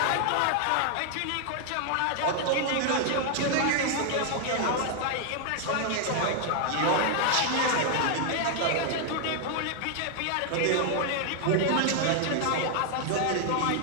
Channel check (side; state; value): both; different; correlation 0.00